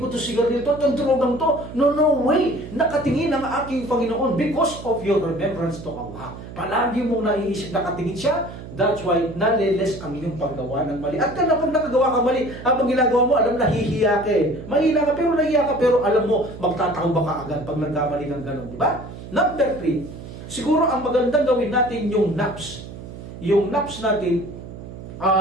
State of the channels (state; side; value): noise; right; hum, 13 dB below the sound